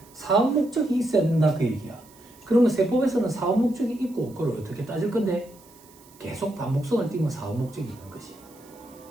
사업 목적이 있어야 된다 그 얘기야. 그러면 세법에서는 사업 목적이 있고 그걸 어떻게 따질 건데 계속 반복성을 띄면 사업 목적이 있는 거지.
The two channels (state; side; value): noise; right; hiss, 26 dB below the sound